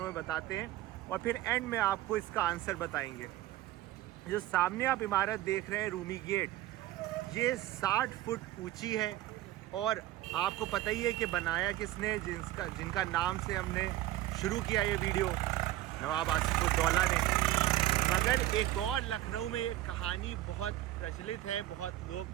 में बताते हैं और फिर एंड में आपको इसका आंसर बताएंगे। जो सामने आप इमारत देख रहे हैं रूमी गेट, ये 60 फुट ऊंची है और आपको पता ही है कि बनाया किसने, जिनका नाम से हमने शुरू किया ये वीडियो, नवाब आसिफुद्दौला ने। मगर एक और लखनऊ में ये कहानी बहुत प्रचलित है, बहुत लोग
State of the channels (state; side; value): quieter; left; 15.1 dB